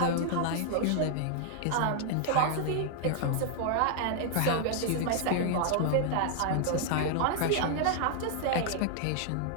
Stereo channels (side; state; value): both; different; correlation 0.00